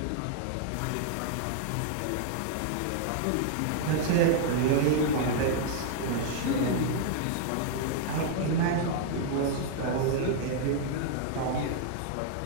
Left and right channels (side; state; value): both; different; correlation -0.01